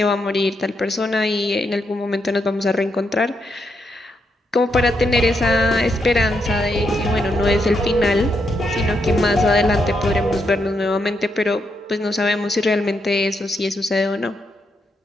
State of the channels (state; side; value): normal; both; correlation 0.80